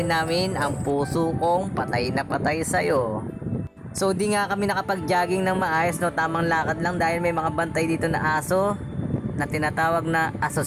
namin ang puso kong patay na patay sa'yo. So di nga kami nakapag-jogging ng maayos, no, tamang lakad lang dahil may mga bantay dito na aso na tinatawag na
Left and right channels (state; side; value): identical; both; correlation 1.00